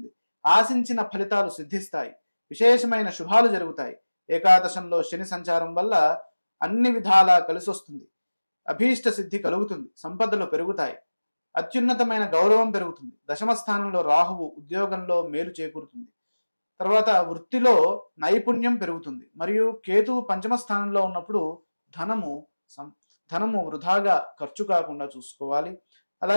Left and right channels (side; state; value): both; inverted; correlation -1.00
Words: ఆశించిన ఫలితాలు సిద్ధిస్తాయి. విశేషమైన శుభాలు జరుగుతాయి. ఏకాదశంలో శని సంచారం వల్ల అన్ని విధాలా కలిసొస్తుంది. అభీష్ట సిద్ధి కలుగుతుంది. సంపదలు పెరుగుతాయి. అత్యున్నతమైన గౌరవం పెరుగుతుంది. దశమ స్థానంలో రాహువు, ఉద్యోగంలో మేలు చేకూరుతుంది. తర్వాత వృత్తిలో నైపుణ్యం పెరుగుతుంది. మరియు కేతువు పంచమ స్థానంలో ఉన్నప్పుడు ధనము వృధాగా ఖర్చు కాకుండా చూసుకోవాలి.